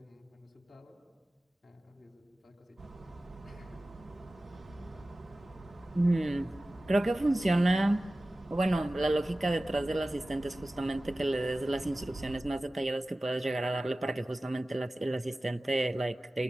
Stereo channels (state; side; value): normal; both; correlation 0.96